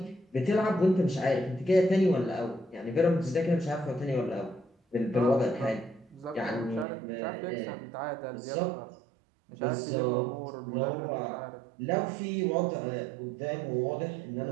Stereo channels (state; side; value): drops out; left; at 6.9 s